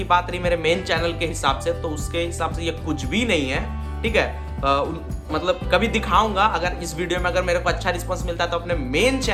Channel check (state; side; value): identical; both; correlation 1.00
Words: बात रही मेरे मेन चैनल के हिसाब से, तो उसके हिसाब से ये कुछ भी नहीं है, ठीक है। मतलब कभी दिखाऊंगा, अगर इस वीडियो में अगर मेरे को अच्छा रिस्पांस मिलता है तो अपने मेन